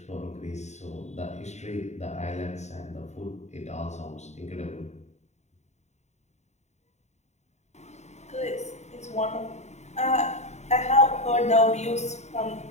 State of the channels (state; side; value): late; right; 0.33 ms